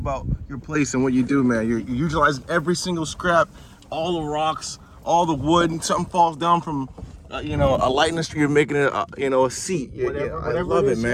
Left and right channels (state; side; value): identical; both; correlation 1.00